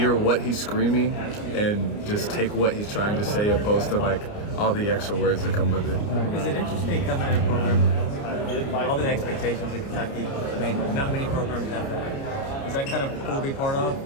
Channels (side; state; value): right; late; 29 ms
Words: what he's screaming and just take what he's trying to say, opposed to like all the extra words that come with it. Is it interesting coming in a program, all the expectations in Kentucky? I mean, not many programs have that. Is that kind of cool to be part